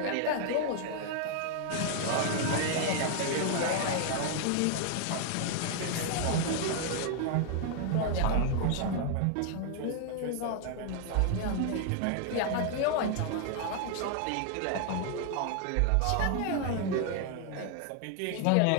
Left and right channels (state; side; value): different; both; correlation 0.00